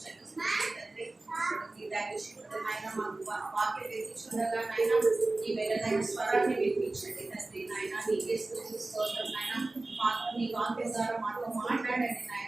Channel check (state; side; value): quieter; left; 3.0 dB